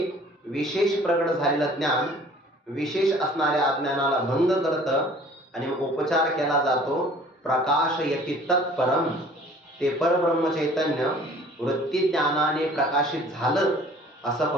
विशेष प्रकट झालेलं ज्ञान विशेष असणाऱ्या अज्ञानाला भंग करतं आणि उपचार केला जातो. प्रकाश यती तत्परम, ते परब्रह्म चैतन्य वृत्ती ज्ञानाने प्रकाशित झालं असं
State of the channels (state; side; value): normal; both; correlation 0.51